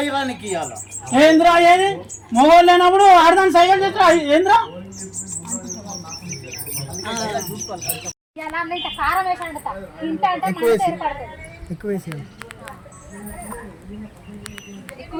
ఏంద్రా ఏది మొగోళ్ళు లేనప్పుడు ఆడదాన్ని సైకిల్ చేస్తా ఏంద్రా ఎక్కువ వేసి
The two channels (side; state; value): both; identical; correlation 1.00